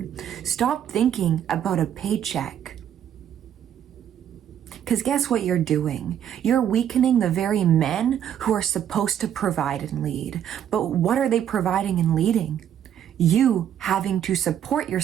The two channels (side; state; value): left; quieter; 9.8 dB